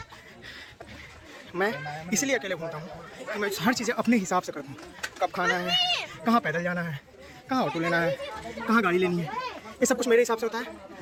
मैं इसलिए अकेले घूमता हूँ कि मैं हर चीज़ें अपने हिसाब से करता हूँ। कब खाना है, कहाँ पैदल जाना है, कहाँ ऑटो लेना है, कहाँ गाड़ी लेनी है, ये सब कुछ मेरे हिसाब से होता है,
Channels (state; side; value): identical; both; correlation 1.00